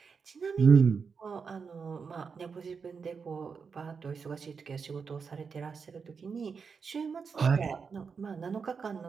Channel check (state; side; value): quieter; left; 5.6 dB